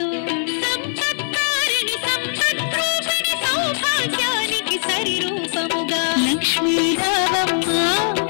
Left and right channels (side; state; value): right; silent; 65 dB below the other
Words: సంపత్కారిణి సంపద్రూపిణి సౌభాగ్యానికి సరిరూపముగా లక్ష్మీ రామమ్మ